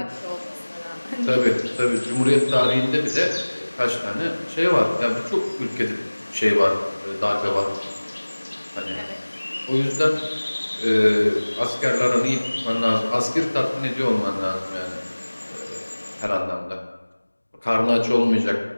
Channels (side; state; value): both; inverted; correlation -1.00